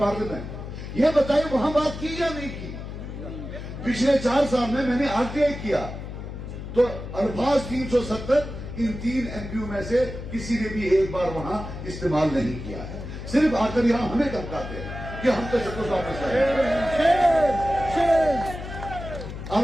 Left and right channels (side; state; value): left; noise; hum, 9 dB below the sound